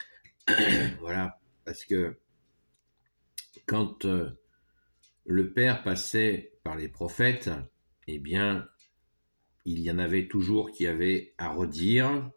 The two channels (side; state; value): both; inverted; correlation -1.00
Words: Voilà, parce que quand le Père passait par les prophètes, eh bien, il y en avait toujours qui avaient à redire.